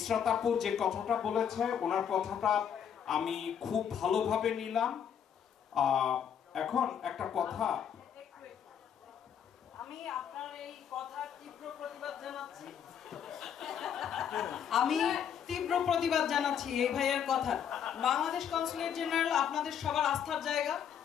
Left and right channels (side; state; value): right; quieter; 8.5 dB